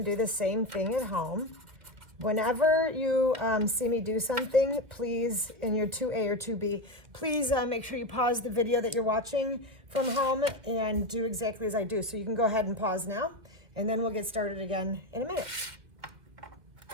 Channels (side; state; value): left; late; 1.9 ms